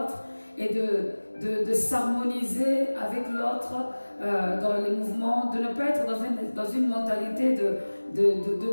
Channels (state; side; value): inverted; both; correlation -1.00